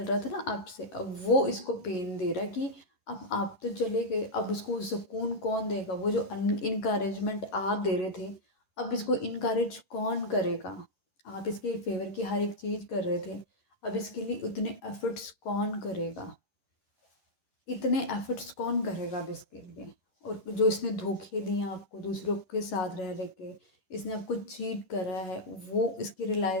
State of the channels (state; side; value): late; right; 11 ms